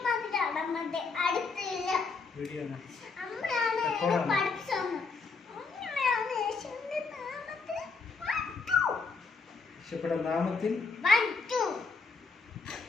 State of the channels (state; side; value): quieter; right; 4.5 dB